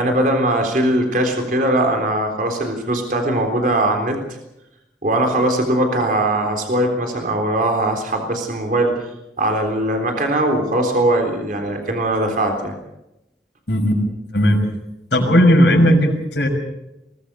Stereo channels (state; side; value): normal; both; correlation 0.46